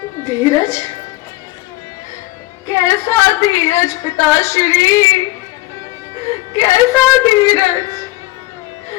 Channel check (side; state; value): right; quieter; 19.0 dB